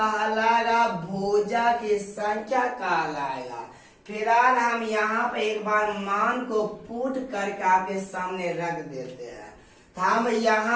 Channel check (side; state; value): both; identical; correlation 1.00